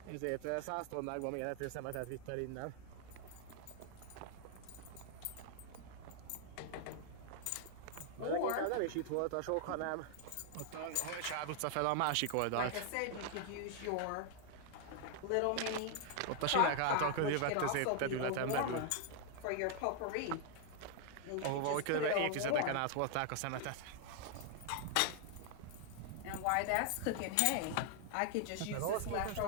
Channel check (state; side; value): different; both; correlation 0.00